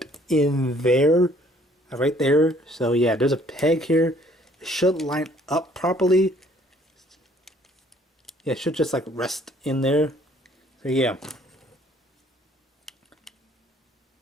in there, right there. So yeah, there's a peg here. It should line up properly. Yeah, it should just like rest in there. So yeah.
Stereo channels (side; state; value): both; normal; correlation 0.60